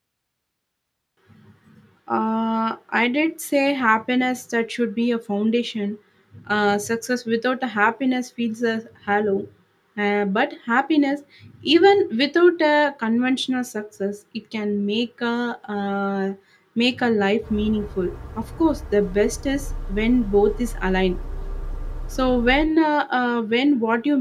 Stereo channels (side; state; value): both; identical; correlation 1.00